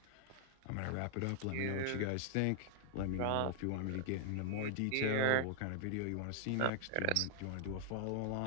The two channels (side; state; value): both; different; correlation 0.00